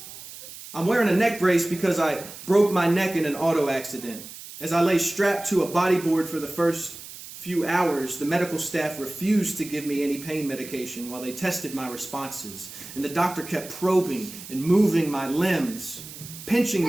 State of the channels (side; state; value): right; noise; hiss, 14 dB below the sound